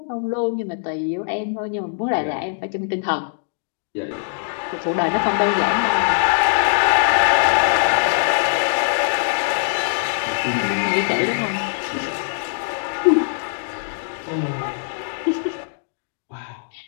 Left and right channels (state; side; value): silent; right; digital silence